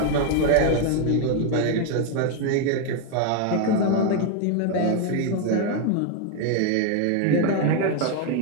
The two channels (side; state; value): both; different; correlation 0.01